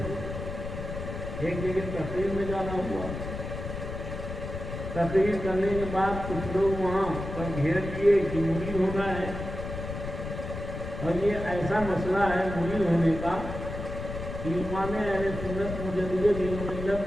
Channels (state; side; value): noise; left; rumble, 7 dB below the sound